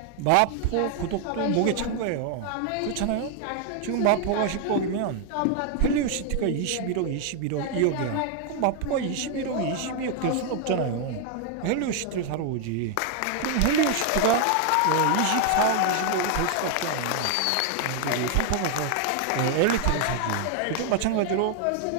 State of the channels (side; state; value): both; different; correlation 0.00